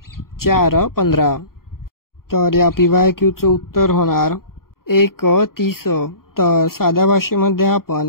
4 15. तर या PYQचं उत्तर होणार 1 30. तर साध्या भाषेमध्ये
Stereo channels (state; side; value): late; right; 0.92 ms